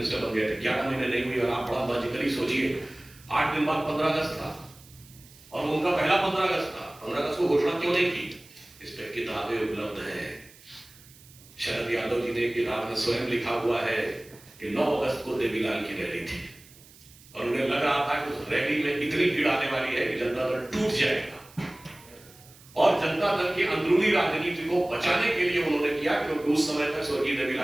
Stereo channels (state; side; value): noise; right; hiss, 24 dB below the sound